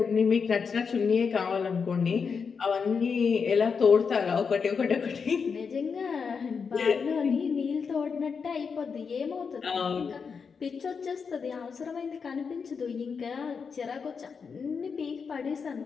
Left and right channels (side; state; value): right; quieter; 5.7 dB